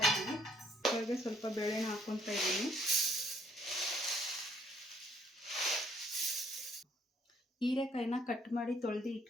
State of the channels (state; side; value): normal; both; correlation 0.65